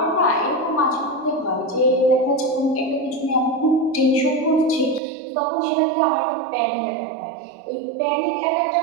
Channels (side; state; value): left; drops out; at 5.0 s